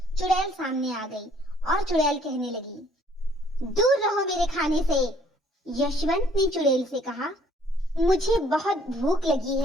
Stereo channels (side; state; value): both; normal; correlation 0.61